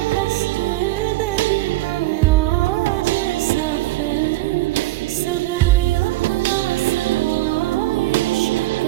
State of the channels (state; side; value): quieter; left; 18.2 dB